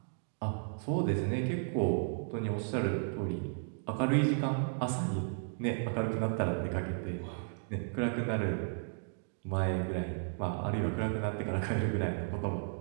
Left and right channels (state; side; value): silent; left; digital silence